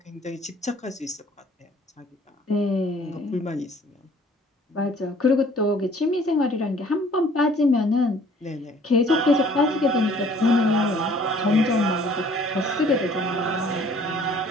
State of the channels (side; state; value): both; normal; correlation 0.55